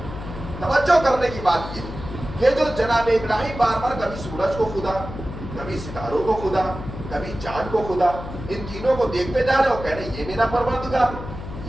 توجہ کرنے کی بات یہ کہ جو جناب ابراہیم بار بار کبھی سورج کو خدا، کبھی ستاروں کو خدا، کبھی چاند کو خدا، ان تینوں کو دیکھتے جا رہے ہو، کہہ رہے یہ میرا پروردگار،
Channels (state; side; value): noise; left; hum, 10 dB below the sound